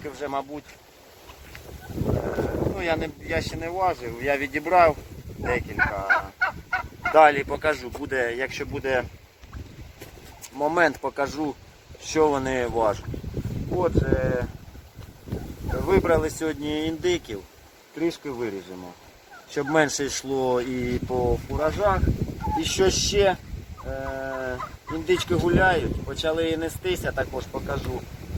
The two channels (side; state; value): both; identical; correlation 1.00